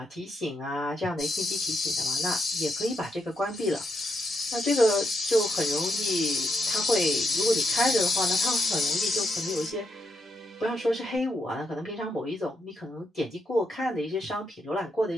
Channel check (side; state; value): both; normal; correlation 0.80